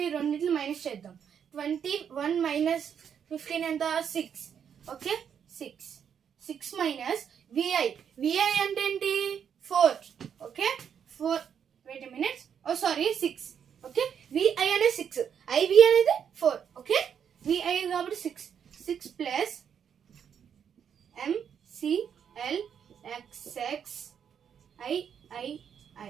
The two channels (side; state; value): left; quieter; 8.0 dB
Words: ఈ రెండింటిని మైనస్ చేద్దాం. 21 మైనస్ 15 ఎంత, 6. ఓకే, 6 మైనస్ VI అంటే ఏంటి, 4. ఓకే, 4 వెయిట్ మినిట్స్, ఓ సారీ 6. ఓకే, VI అనేది 6, IV అనేది 4. ఓకే, VI కాబట్టి 6 ప్లస్ MCLXXII.